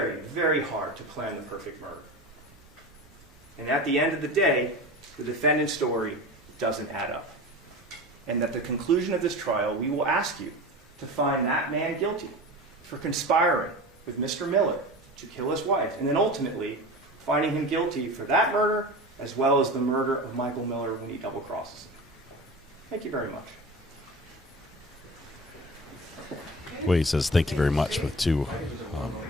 very hard to plan the perfect murder. And at the end of the day, the defendant's story doesn't add up. And at the conclusion of this trial, we will ask you to find that man guilty for conspiring with Mr. Miller to kill his wife, and then ultimately finding him guilty for that murder as well as the murder of Michael Miller when he double-crosses him. Thank you very much. Wade says thank you very much with 2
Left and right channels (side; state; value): both; normal; correlation 0.32